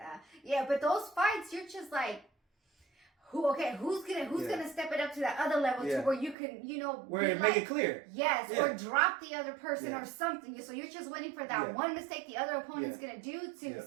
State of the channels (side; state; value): left; drops out; at 6.4 s